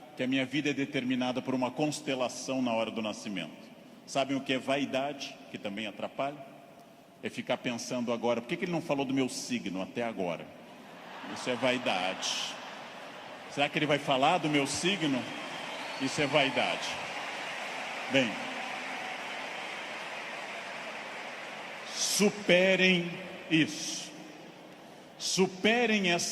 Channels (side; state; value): both; identical; correlation 1.00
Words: que a minha vida é determinada por uma constelação na hora do nascimento. Sabem o que é vaidade, que também atrapalha? É ficar pensando agora, por que ele não falou do meu signo até agora? Isso é vaidade. Será que ele vai falar do meu signo? Isso é vaidade. Bem, superem isso. Superem